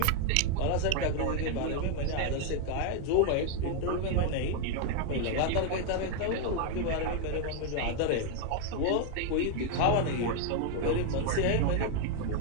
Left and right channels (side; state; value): both; different; correlation 0.01